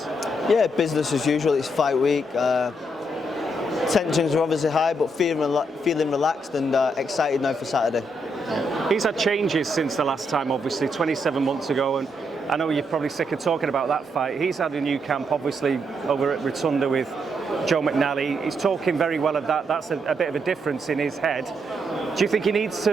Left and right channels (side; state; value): both; normal; correlation 0.78